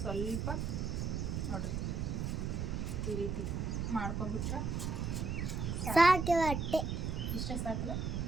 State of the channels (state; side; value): noise; right; rumble, 1 dB below the sound